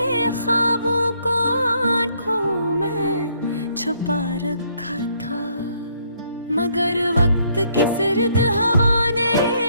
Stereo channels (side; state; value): both; inverted; correlation -0.69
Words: ख्वाबों को आंखों में छुपा रखा था। मगर वक्त की सर्द हवा ने